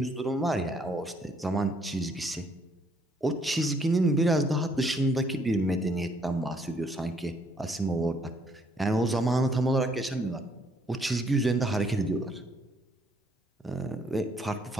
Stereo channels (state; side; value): normal; both; correlation 0.67